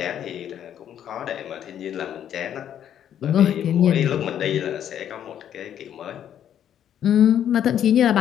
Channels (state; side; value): quieter; right; 10.0 dB